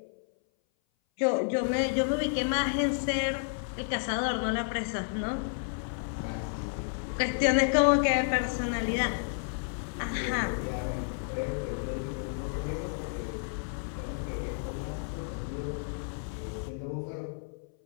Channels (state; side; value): silent; right; 57 dB below the other